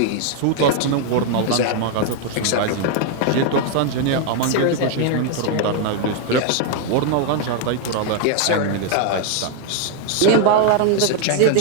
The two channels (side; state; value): both; different; correlation 0.01